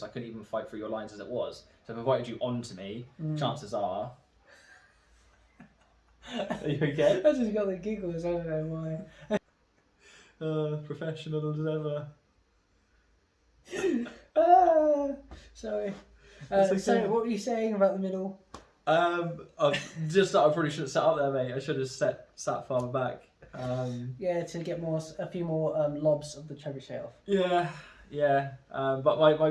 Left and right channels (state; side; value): identical; both; correlation 1.00